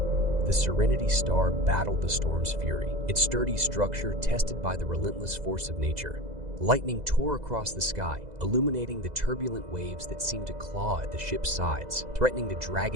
The Serenity Star battled the storm's fury, its sturdy structure tested by the relentless force of nature. Lightning tore across the sky, illuminating the turbulent waves that seemed to claw at the ship's sides, threatening to drag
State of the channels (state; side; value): late; left; 2.0 ms